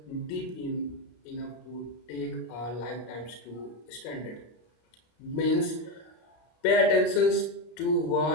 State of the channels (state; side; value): late; right; 33 ms